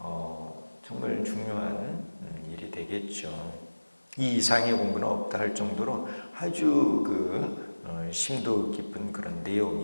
정말 중요한 일이 되겠죠. 이 이상의 공부는 없다 할 정도로 아주 심도 깊은 그런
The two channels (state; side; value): inverted; both; correlation -1.00